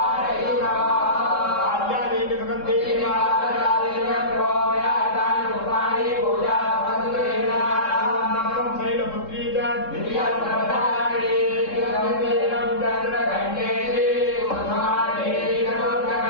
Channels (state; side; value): late; right; 3.7 ms